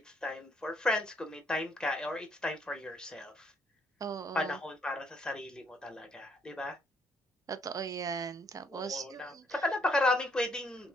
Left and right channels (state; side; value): normal; both; correlation 0.69